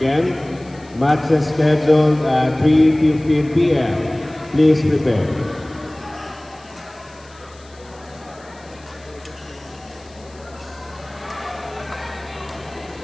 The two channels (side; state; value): left; noise; hiss, 26 dB below the sound